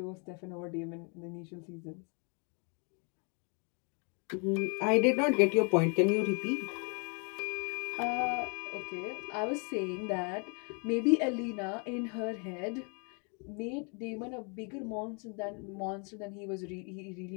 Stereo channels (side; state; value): right; quieter; 35.9 dB